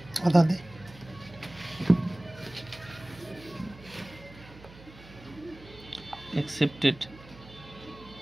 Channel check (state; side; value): noise; right; hum, 20 dB below the sound